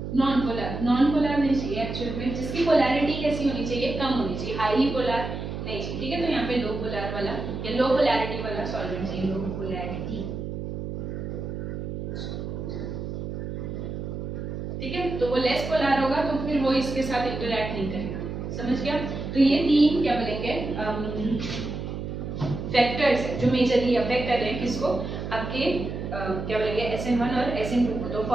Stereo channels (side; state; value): right; noise; hum, 6 dB below the sound